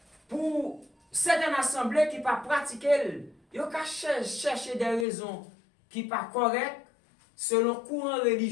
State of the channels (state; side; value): drops out; right; at 5.1 s